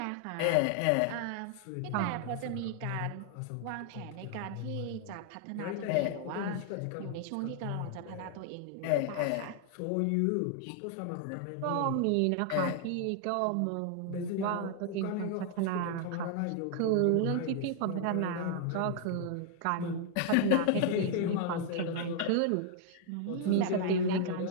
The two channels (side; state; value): both; different; correlation 0.00